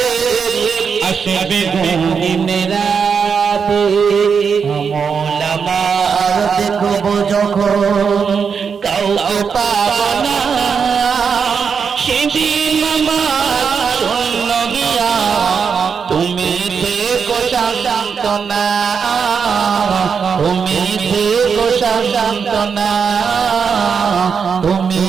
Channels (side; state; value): left; quieter; 6.2 dB